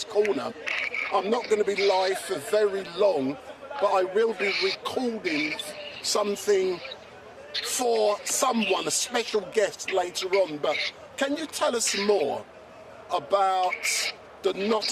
Corner. I'm not going to be live for very long, but I will be recording something for someone, a special guest later on. But can you tell us more about the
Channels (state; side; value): identical; both; correlation 1.00